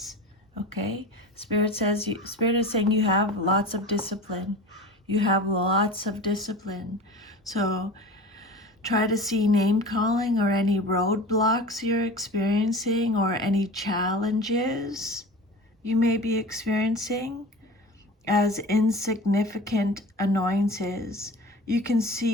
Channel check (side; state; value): both; normal; correlation 0.36